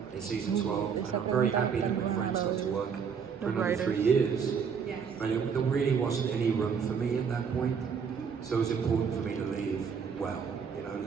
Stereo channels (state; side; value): quieter; left; 6.5 dB